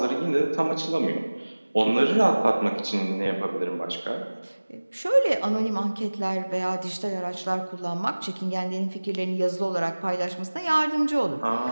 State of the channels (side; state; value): both; inverted; correlation -1.00